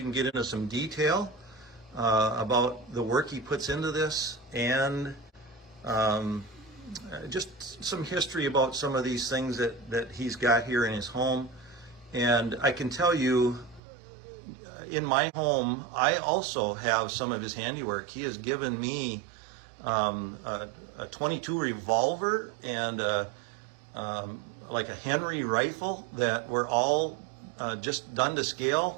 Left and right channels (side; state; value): left; drops out; at 13.8 s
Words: can get into some detail about the work he puts into this, and just some history about some of these things that he's got here in his home. And I can tell you, in my home, I also have some of his handiwork. He has given me a 22 revolver and like a Henry rifle that were all just done to scale.